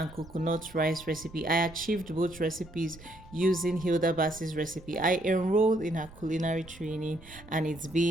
coconut rice recipe. I achieved both recipes using Hilda Bass's recipe. I enrolled in her culinary training and it's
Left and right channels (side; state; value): right; noise; rumble, 19 dB below the sound